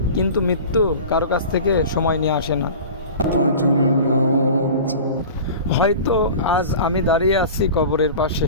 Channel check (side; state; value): both; inverted; correlation -0.36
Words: কিন্তু মৃত্যু কারো কাছ থেকে সময় নিয়ে আসে না। হয়তো আজ আমি দাঁড়িয়ে আছি কবরের